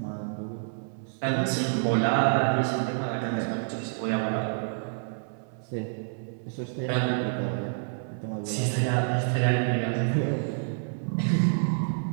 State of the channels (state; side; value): silent; left; 59 dB below the other